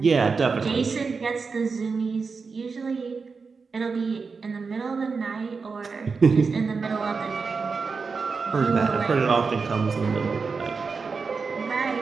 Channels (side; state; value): left; quieter; 4.9 dB